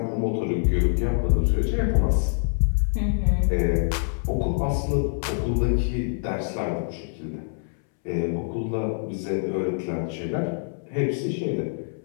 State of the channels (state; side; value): silent; right; 62 dB below the other